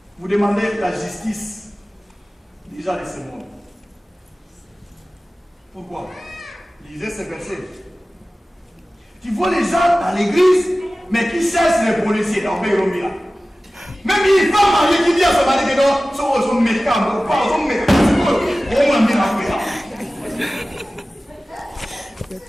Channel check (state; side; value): normal; both; correlation 0.96